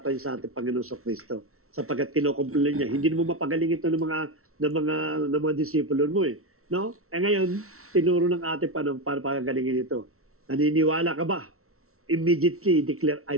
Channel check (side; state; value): left; late; 0.63 ms